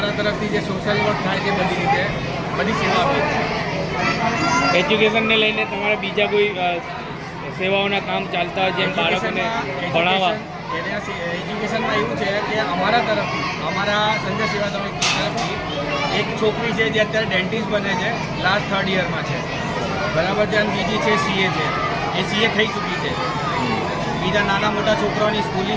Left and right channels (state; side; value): identical; both; correlation 1.00